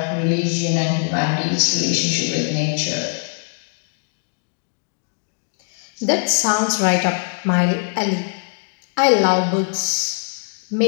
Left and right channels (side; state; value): right; silent; 65 dB below the other